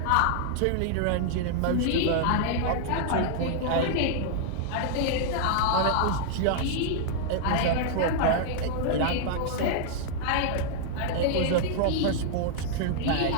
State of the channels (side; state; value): both; different; correlation -0.01